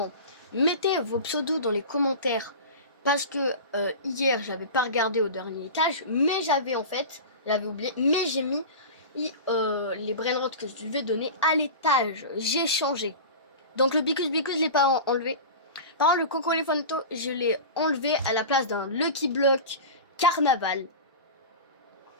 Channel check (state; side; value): inverted; both; correlation -0.31